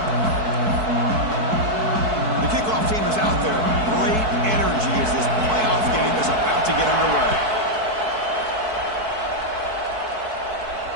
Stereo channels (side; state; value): left; late; 4.6 ms